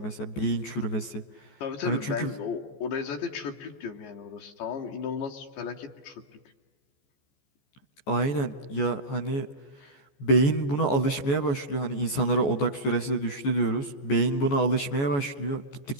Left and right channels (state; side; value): late; right; 14 ms